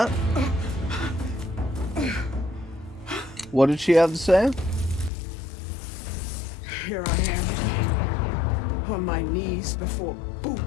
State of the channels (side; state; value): right; drops out; at 5.1 s